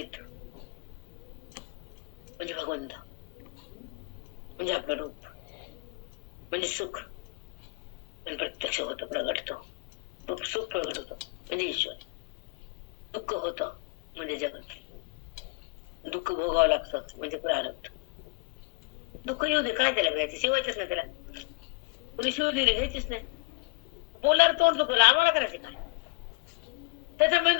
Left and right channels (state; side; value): quieter; right; 26.3 dB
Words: म्हणजे भगवंत, म्हणजे आपलं रूप, म्हणजे सुख, पण प्रत्यक्ष होतं, प्रगटतो, सुख प्रगट होतो म्हणजे ईश्वर, दुःख होतं म्हणजे जगत, दुःख भोगावं लागतं म्हणजे प्रारब्ध. दुःख येऊ दे, काय त्याला घ्यायचं, शिवायचंच नाही त्याला, कुणी शिव दिली घ्यायचीच नाही, बोलार तोंड दुखवलं, आम्हाला करायचं काय, त्याचा